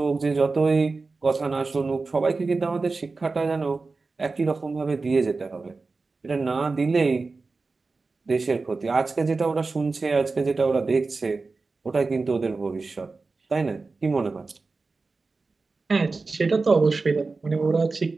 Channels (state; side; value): quieter; left; 3.9 dB